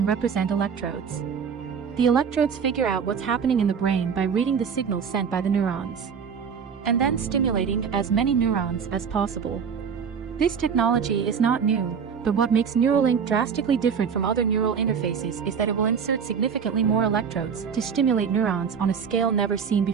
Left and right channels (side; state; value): left; quieter; 6.7 dB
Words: represent electrodes. The electrodes figure out what's happening in the brain by reading the signals sent by the neurons, and then stimulating as many neurons as possible. This technology is not new, but what makes Neuralink drastically different from other neural interfaces is that it will insert significantly more electrodes to stimulate neurons on a scale never seen